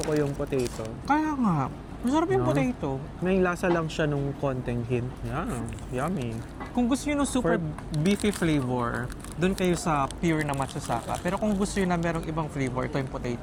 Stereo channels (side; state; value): both; identical; correlation 1.00